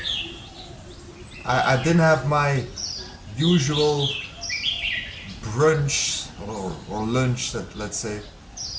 I didn't have my usual brunch or lunch, let's say.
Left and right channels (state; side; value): identical; both; correlation 1.00